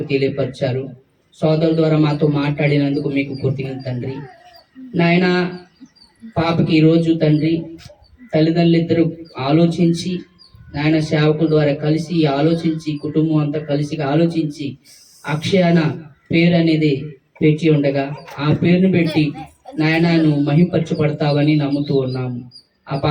తెలియపరిచారు. సోదరుల ద్వారా మాతో మాట్లాడినందుకు మీకు కృతజ్ఞత తండ్రి. నాయన, పాపకి ఈరోజు తండ్రి తల్లిదండ్రులు ఇద్దరు ఆలోచించి నాయన సేవకుల ద్వారా కలిసి ఆలోచించి, కుటుంబం అంతా కలిసి ఆలోచించి అక్షయాన పేరు అనేది పెట్టి ఉండగా ఆ పేరును పెట్టి నాయన నువ్వు మహింపరచబడతావని నమ్ముతూ ఉన్నాము. ఆ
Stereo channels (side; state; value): both; identical; correlation 1.00